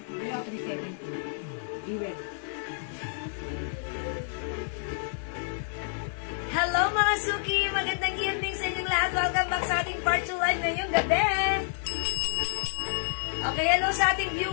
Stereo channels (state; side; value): silent; right; 59 dB below the other